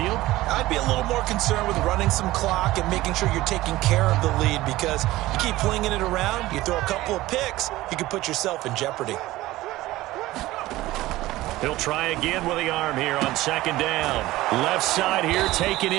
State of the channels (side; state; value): left; quieter; 17.3 dB